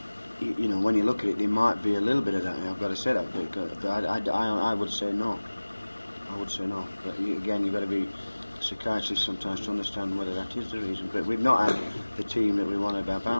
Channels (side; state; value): both; inverted; correlation -1.00